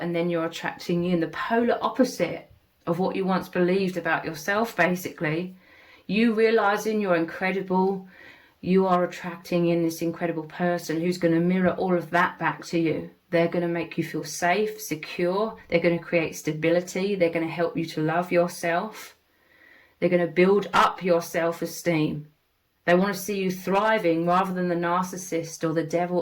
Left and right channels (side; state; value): both; identical; correlation 1.00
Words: then you're attracting in the polar opposite of what you once believed about yourself, basically. You realizing you're incredible, you are attracting in this incredible person who's going to mirror all of that back to you. They're going to make you feel safe, secure. They're going to create stability. They're going to help you to love yourself. They're going to build up your self-esteem. They want to see you thriving rather than the narcissist or the